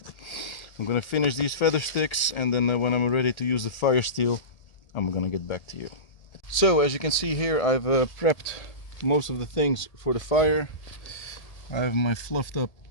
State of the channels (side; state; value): right; late; 1.8 ms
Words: finish these feather sticks, and then when I'm ready to use the fire steel, I'm gonna get back to you. So as you can see here, I've prepped most of the things for the fire. I have my fluffed up